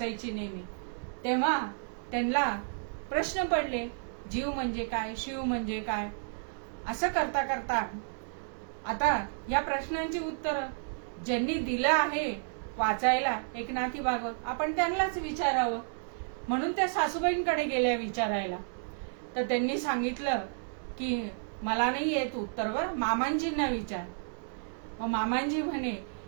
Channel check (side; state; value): left; silent; digital silence